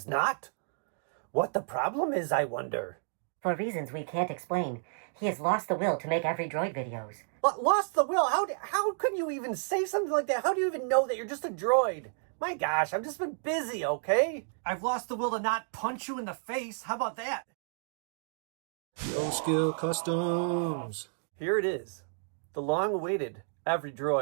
not. What the problem is, I wonder. For reasons we can't explain, he has lost the will to make every droid videos. But lost the will? How could you even say something like that? How do you even know that you're just a droid? My gosh, I've just been busy, okay? I've lost the will to not punch you in the face. How about that? No skill customs. Here it is. The long-awaited Every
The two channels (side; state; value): left; silent; digital silence